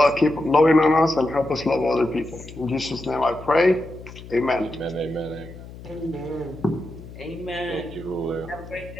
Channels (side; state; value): left; noise; hum, 15 dB below the sound